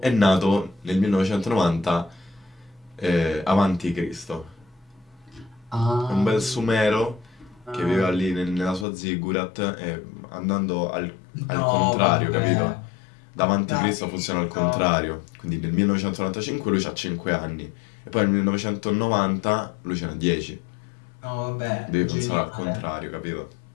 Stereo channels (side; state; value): right; drops out; at 8.8 s